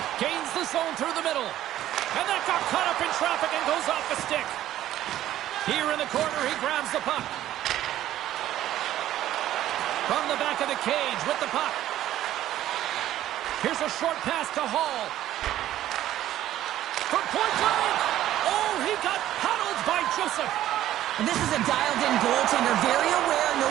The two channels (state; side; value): quieter; left; 13.1 dB